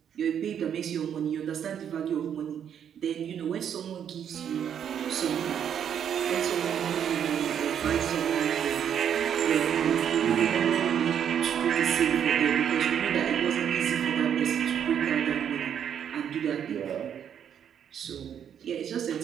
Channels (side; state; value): left; quieter; 8.8 dB